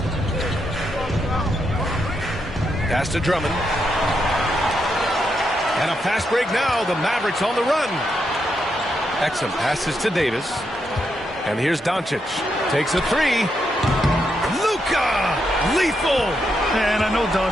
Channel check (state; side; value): normal; both; correlation 0.81